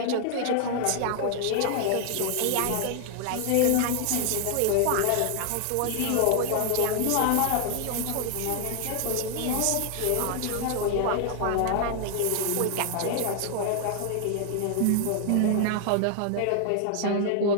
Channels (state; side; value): different; both; correlation 0.00